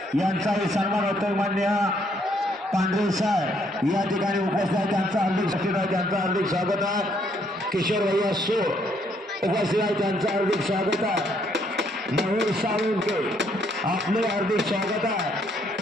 यांचाही सन्मान होतोय. मान्य पांढरे साहेब या ठिकाणी उपस्थित आहे, त्यांचं हार्दिक स्वागत आहे. किशोर भैया सो उपस्थित आहे, त्यांचं हार्दिक स्वागत आहे. मयूर साळुंके आपले हार्दिक स्वागत आहे.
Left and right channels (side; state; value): both; normal; correlation 0.69